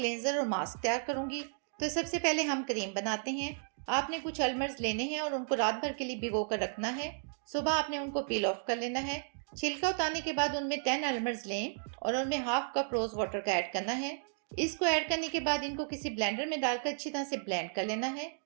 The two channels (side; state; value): left; silent; digital silence